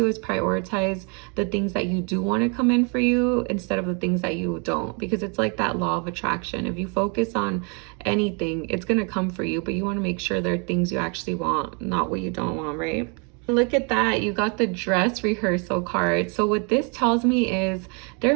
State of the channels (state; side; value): quieter; left; 35.3 dB